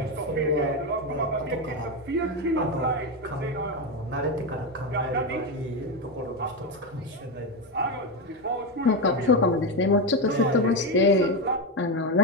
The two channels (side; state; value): both; normal; correlation 0.12